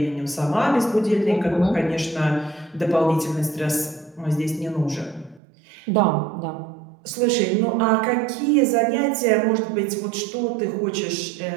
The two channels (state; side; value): drops out; left; at 5.4 s